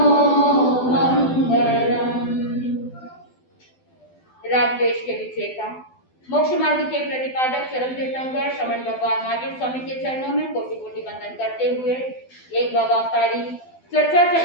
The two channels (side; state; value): right; late; 12 ms